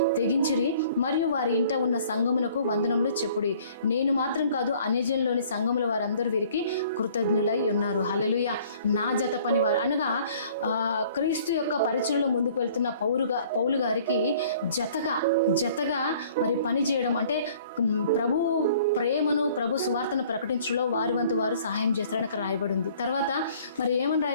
తెగించిరి, మరియు వారి ఇంట ఉన్న సంఘమునకు వందనములు చెప్పుడి. నేను మాత్రం కాదు, అన్యజనులోని సంఘముల వారందరూ వీరికి కృతజ్ఞులై ఉన్నారు. హల్లెలూయా. నా జత పనివారు అనగా క్రీస్తు యొక్క పరిచయలో ముందుకు వెళ్తున్న పౌలు గారికి జతగా మరి పని చేయడం అంటే ప్రభు ప్రేమను, ప్రభు సువార్తను ప్రకటించడంలో వారి వంతు వారు సహాయం చేస్తారని అక్కడ రాయబడి ఉంది. తర్వాత మరి ఏమని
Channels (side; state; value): both; inverted; correlation -0.55